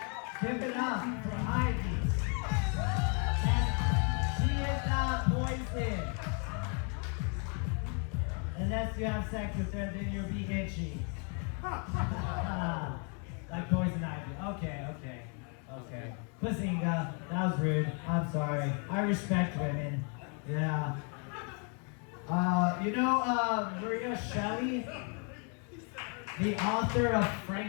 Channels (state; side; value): quieter; right; 39.0 dB